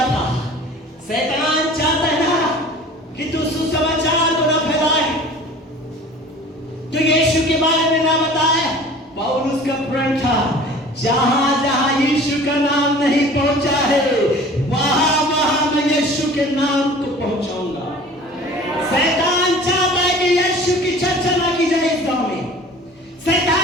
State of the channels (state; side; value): normal; both; correlation 0.44